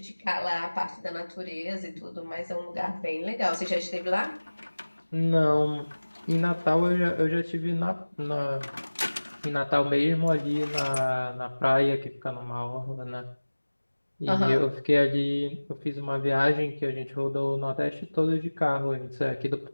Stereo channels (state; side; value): inverted; both; correlation -1.00